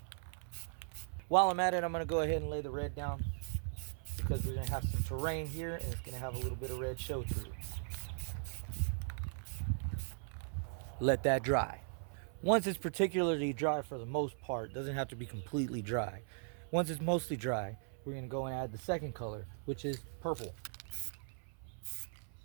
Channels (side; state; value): left; silent; 52 dB below the other